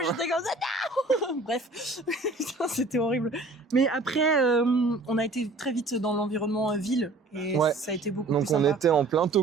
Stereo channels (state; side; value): quieter; left; 3.1 dB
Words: j'étais comme ça, non. Bref, putain, c'était horrible. Mais après, on a été très vite dans l'environnement ville et Ouais. ça a été beaucoup Donc plus on sympa. était en plein